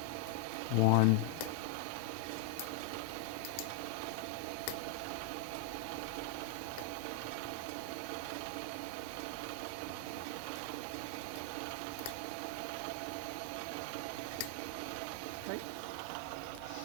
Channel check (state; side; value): different; both; correlation 0.00